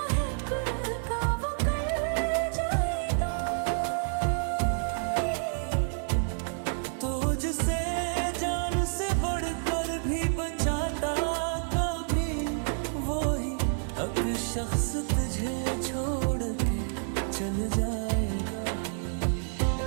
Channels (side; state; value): left; silent; digital silence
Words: का वो कर जाएगा। तुझसे जान से बढ़कर भी बचाता कभी वही एक शख्स तुझे छोड़ के चल जाएगा।